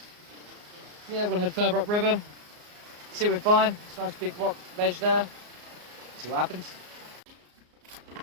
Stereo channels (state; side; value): late; left; 34 ms